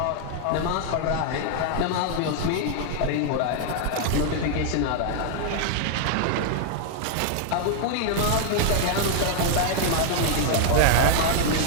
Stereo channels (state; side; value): different; both; correlation 0.00